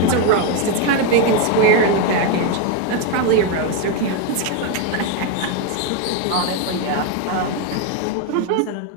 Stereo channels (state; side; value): different; both; correlation 0.01